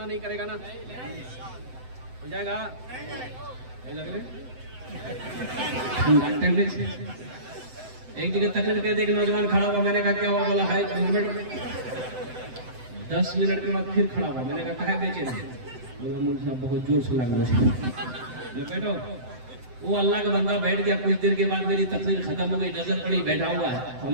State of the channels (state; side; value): late; left; 7.9 ms